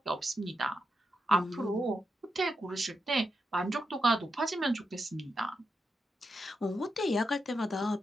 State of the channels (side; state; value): both; normal; correlation 0.86